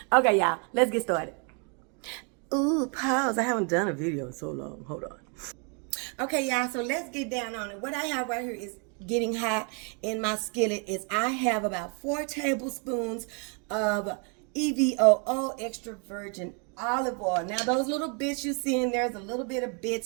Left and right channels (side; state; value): left; quieter; 37.6 dB